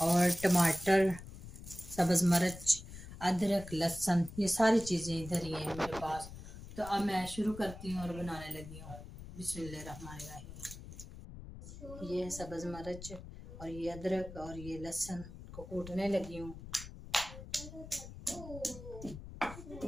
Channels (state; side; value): noise; left; rumble, 13 dB below the sound